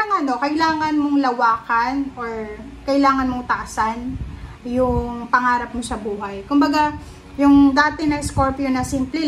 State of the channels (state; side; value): identical; both; correlation 1.00